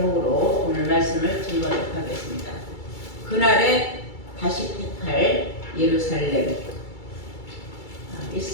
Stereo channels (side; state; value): right; late; 2.3 ms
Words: 오늘 말씀을 증거하도록 하겠습니다. 그날에 다시 택할 예루살렘. 이